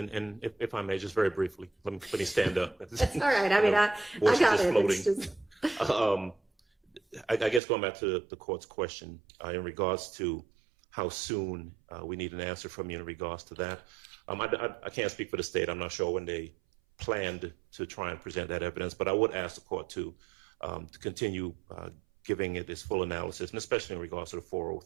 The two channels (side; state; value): left; drops out; at 7.6 s